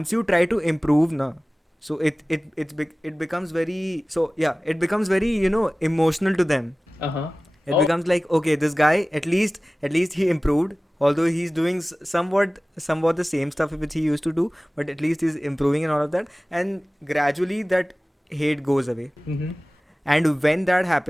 you try to improve, na, so it becomes very, so yeah, it becomes very, emotional to them. Uh-huh. It Oh. becomes like, okay, this guy at least he improved, although he's doing somewhat the same stuff which he used to do, but at least he's improving and all of that, and gradually that hate goes away. Mm-hmm. And when that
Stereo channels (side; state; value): both; normal; correlation 0.98